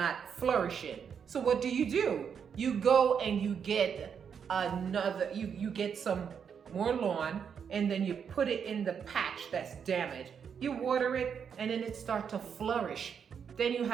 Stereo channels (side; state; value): left; quieter; 7.2 dB